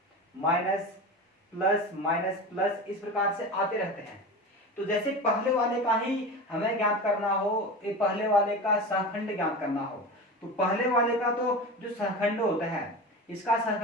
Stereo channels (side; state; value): both; normal; correlation 0.28